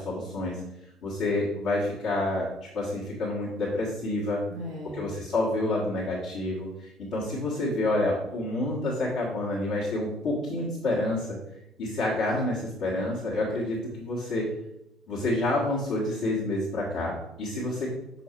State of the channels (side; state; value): both; normal; correlation 0.59